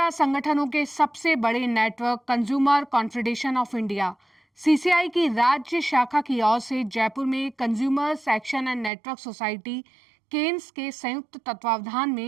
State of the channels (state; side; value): drops out; left; at 8.9 s